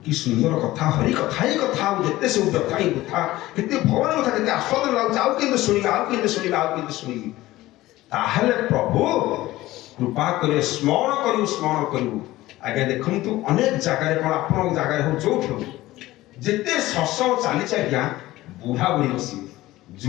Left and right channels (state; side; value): quieter; right; 17.1 dB